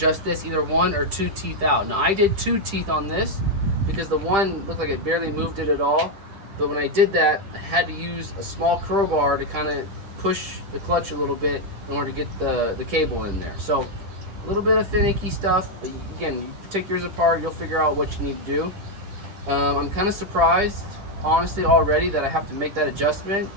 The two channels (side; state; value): left; late; 10 ms